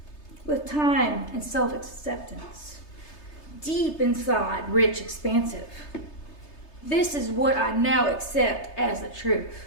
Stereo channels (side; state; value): right; late; 3.3 ms